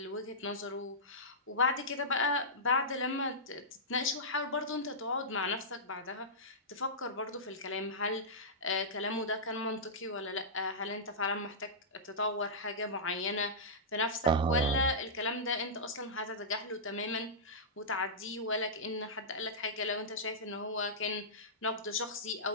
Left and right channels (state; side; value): normal; both; correlation -0.15